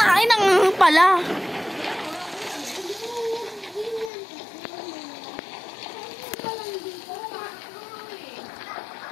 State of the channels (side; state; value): right; drops out; at 4.1 s